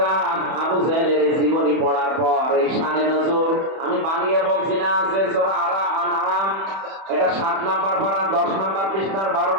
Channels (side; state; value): left; late; 31 ms